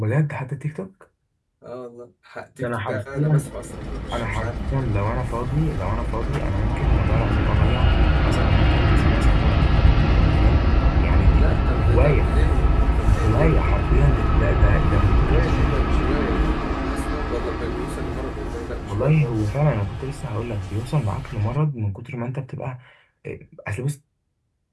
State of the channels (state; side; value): identical; both; correlation 1.00